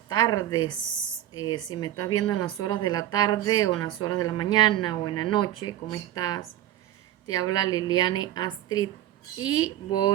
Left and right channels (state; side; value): quieter; left; 12.7 dB